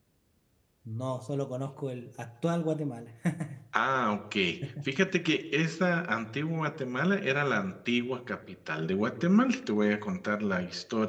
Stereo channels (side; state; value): both; identical; correlation 1.00